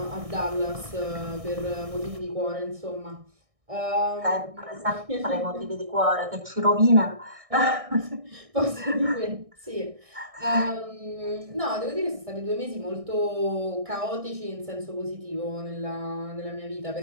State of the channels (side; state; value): left; late; 1.6 ms